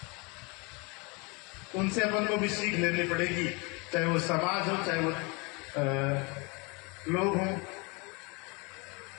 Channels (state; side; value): quieter; right; 29.0 dB